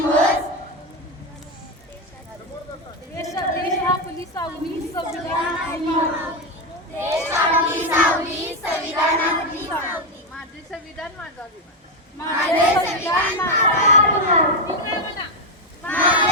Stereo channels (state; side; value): normal; both; correlation 0.07